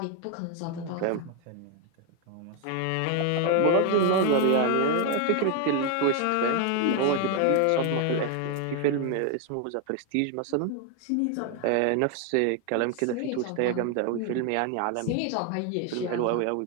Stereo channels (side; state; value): both; different; correlation 0.01